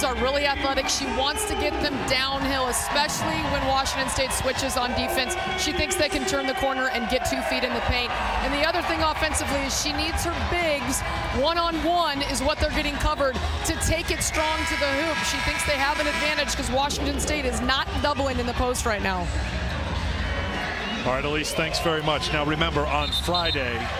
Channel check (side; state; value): both; identical; correlation 1.00